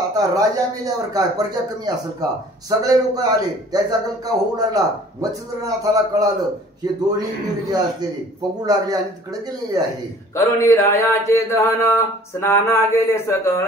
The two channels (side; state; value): both; normal; correlation 0.51